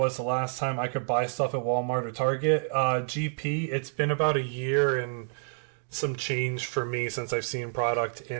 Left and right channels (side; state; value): left; silent; digital silence